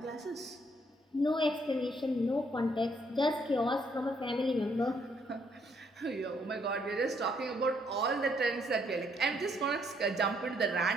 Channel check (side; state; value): both; normal; correlation 0.70